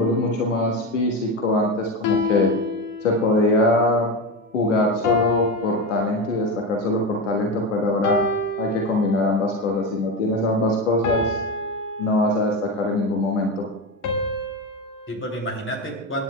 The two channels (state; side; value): normal; both; correlation 0.18